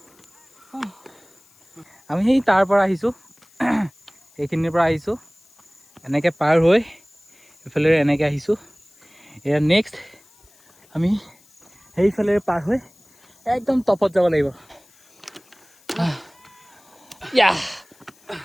আমি সেই তাৰ পৰা আহিছোঁ এইখিনিৰ পৰা আহিছোঁ এনেকৈ পাৰ হৈ এইফালে এনেকৈ আহিছোঁ এয়া নেক্সট আমি সেইফালে পাৰ হৈ একদম টপত যাব লাগিব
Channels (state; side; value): noise; left; hiss, 30 dB below the sound